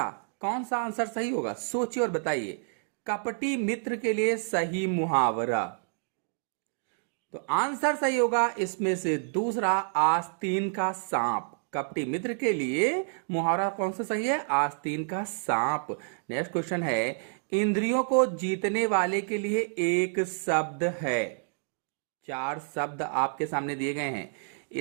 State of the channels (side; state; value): left; silent; digital silence